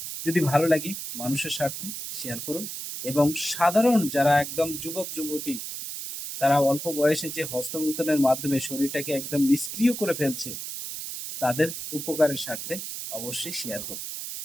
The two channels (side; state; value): right; noise; hiss, 7 dB below the sound